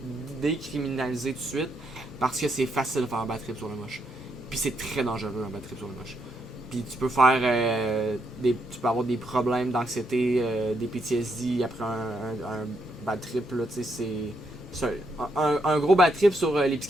tout de suite, parce que c'est facile de faire un bad trip sur le moche. Puis c'est très dangereux un bad trip sur le moche. Puis tu peux faire tu peux avoir des problèmes d'anxiété, des PTSD après un bad trip là, tu sais, c'est un gros bad trip sur les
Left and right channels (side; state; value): both; normal; correlation 0.77